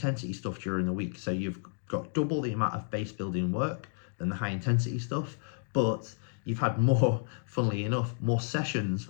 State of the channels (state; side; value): silent; right; 57 dB below the other